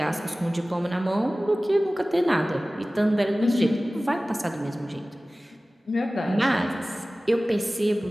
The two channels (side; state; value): both; normal; correlation 0.97